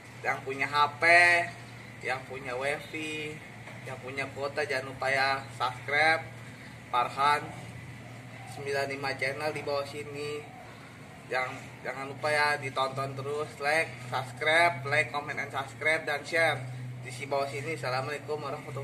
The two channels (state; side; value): identical; both; correlation 1.00